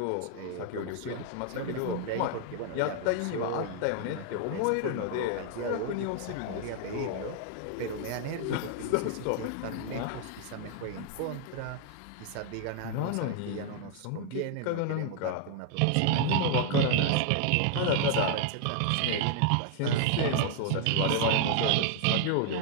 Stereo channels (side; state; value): both; different; correlation 0.00